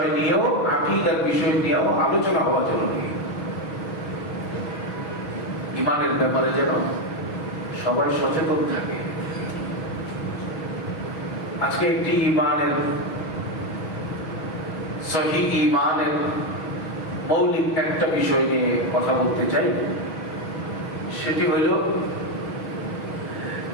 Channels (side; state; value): right; late; 6.2 ms